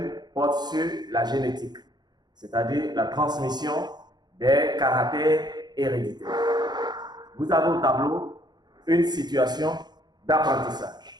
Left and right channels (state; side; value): late; left; 0.20 ms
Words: porte sur la génétique, c'est-à-dire la transmission des caractères héréditaires. Vous avez au tableau une situation